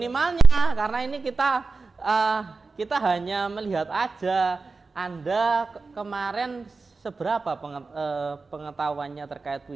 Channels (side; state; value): left; quieter; 4.0 dB